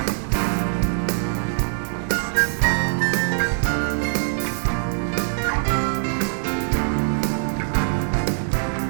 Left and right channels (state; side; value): silent; left; 64 dB below the other